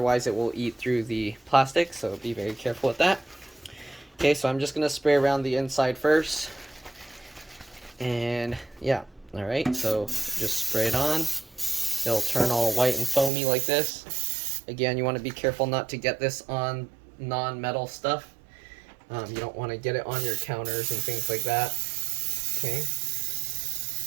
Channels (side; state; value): left; drops out; at 13.3 s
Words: it will eat through the plastic. So be very careful with that. Okay, so I'm just going to spray around the inside first. And yeah, alright, so just spray it on. It'll turn all white and foamy like this. Again, you want to be careful not to get this on non-metal stuff. You don't want to get it on your counters and things like that. Okay,